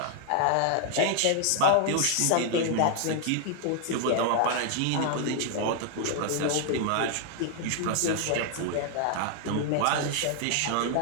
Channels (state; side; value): different; both; correlation 0.00